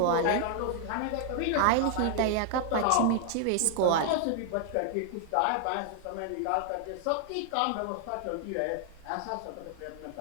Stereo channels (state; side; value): different; both; correlation 0.00